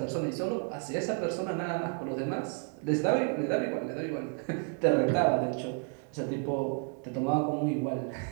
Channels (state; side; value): quieter; left; 38.1 dB